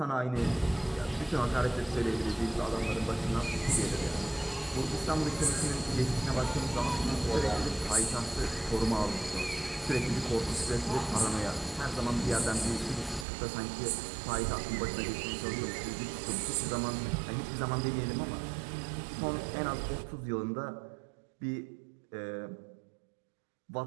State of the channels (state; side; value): drops out; left; at 13.2 s